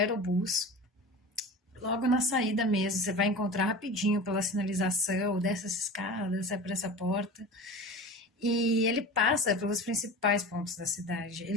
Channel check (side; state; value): both; normal; correlation 0.32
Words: Logo na saída mesmo, você vai encontrar rapidinho pela sinalização dessas escadas, sai por essa porta. E ele passa pelos principais pontos da cidade.